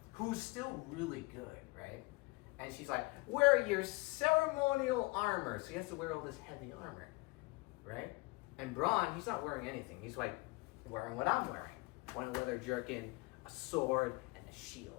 who's still really good, right? And she's like, wear your ceremonial armor. So he has to wear all this heavy armor, right? And Bronn, he's not wearing anything. He's like wearing what I'm wearing. One leather jerkin, a sword, and a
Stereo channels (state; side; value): quieter; right; 25.1 dB